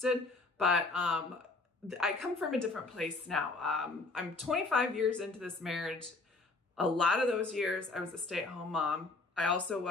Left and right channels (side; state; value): right; quieter; 3.5 dB